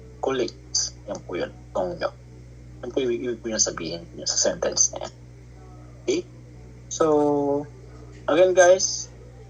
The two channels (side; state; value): both; identical; correlation 1.00